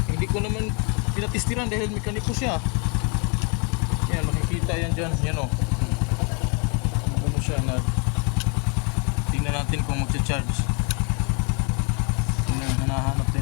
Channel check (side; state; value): right; quieter; 35.1 dB